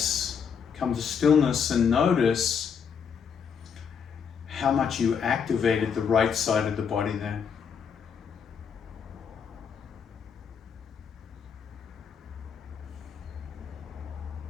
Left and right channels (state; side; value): quieter; right; 6.8 dB